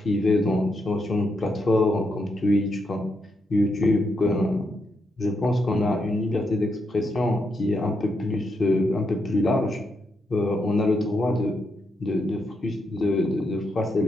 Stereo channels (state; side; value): normal; both; correlation 0.81